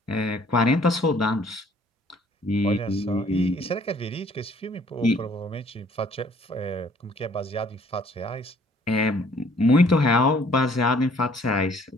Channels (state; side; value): normal; both; correlation 0.59